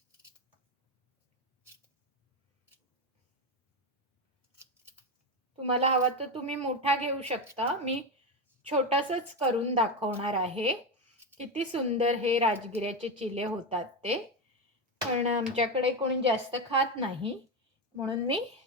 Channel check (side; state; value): both; normal; correlation 0.13